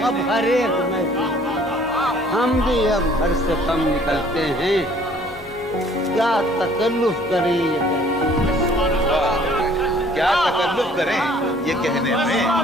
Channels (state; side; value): normal; both; correlation 0.57